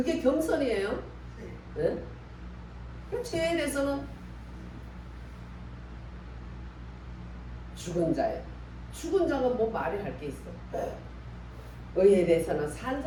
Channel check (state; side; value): identical; both; correlation 1.00